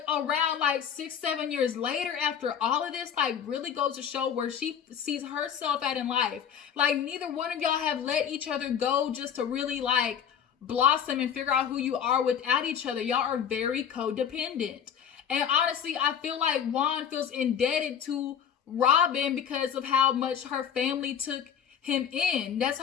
around like 6-7 years later after all of this, like, really goes to show where she sees herself at in life. Like, neither one of y'all have let each other go just to really like blossom and figure out who you are without each other. Y'all are very codependent. And honestly, I feel like Juan feels indebted to Robyn because of how much her family took him in. That's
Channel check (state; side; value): quieter; right; 8.3 dB